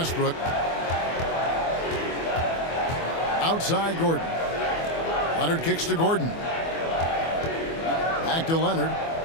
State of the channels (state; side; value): late; right; 24 ms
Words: Outside Gordon. Leonard kicks to Gordon. Back to Leonard.